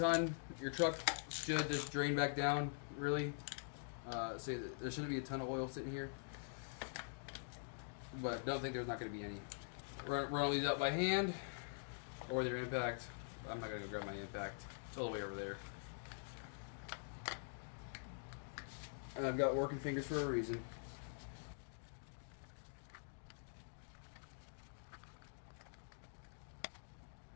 Your truck should just drain back down, really. So there shouldn't be a ton of oil sitting here. But don't think there's not gonna be any. Run all these out by hand, or with your impact. I'm not gonna go grab my impact. It's all the way over there. And I've got working fingers for a reason.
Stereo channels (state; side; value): silent; right; digital silence